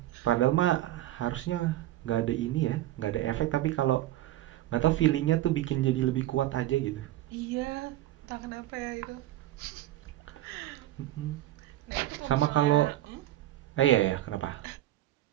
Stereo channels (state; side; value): quieter; left; 14.5 dB